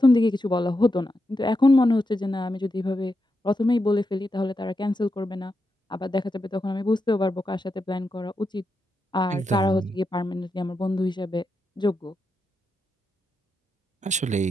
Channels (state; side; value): normal; both; correlation 0.86